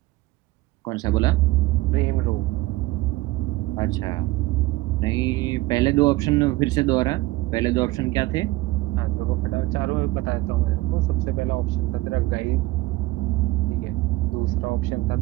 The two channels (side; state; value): left; quieter; 18.9 dB